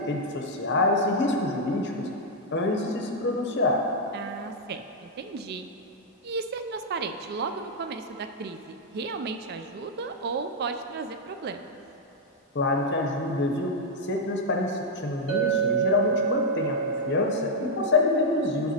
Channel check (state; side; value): normal; both; correlation -0.03